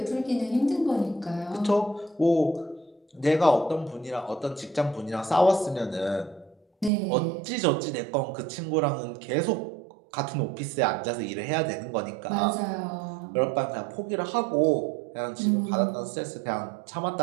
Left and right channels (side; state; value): left; drops out; at 6.9 s